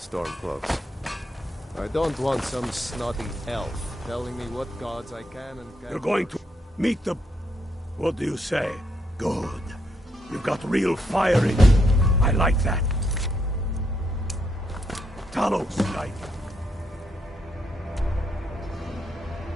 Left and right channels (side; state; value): both; normal; correlation 0.77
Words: I don't want some snotty elf telling me what gods I can and can't. You're going to meet the... What do you say? Good. You've got real fire in you. I like that. Talos, guide you.